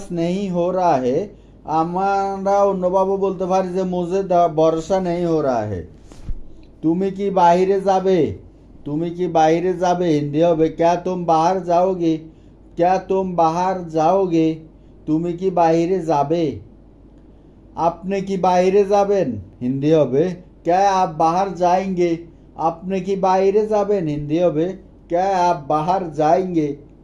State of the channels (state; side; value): identical; both; correlation 1.00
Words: नहीं हो रहा है। আমরা অন্যভাবে বলতে পারি যে मुझे ভরসা नहीं हो रहा है। তুমি কি বাইরে যাবে? তুমি কি বাইরে যাবে হিন্দি হবে क्या तुम बाहर जाओगे। क्या तुम बाहर जाओगे। তুমি কি বাইরে যাবে? আপনি কি বাইরে যাবেন হিন্দি হবে क्या आप बाहर जाएंगे। আপনি কি বাইরে যাবেন হিন্দি হবে क्या आप बाहर जाएंगे।